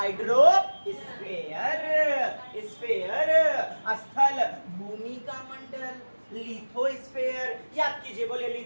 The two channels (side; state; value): both; inverted; correlation -1.00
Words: स्फेयर, स्थल भूमि का मंडल, लिथोस्फेयर, याद कीजिए, बोले